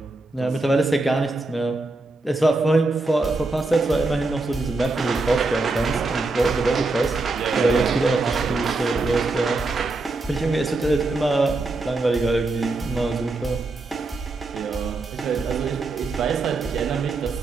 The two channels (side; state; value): left; quieter; 3.2 dB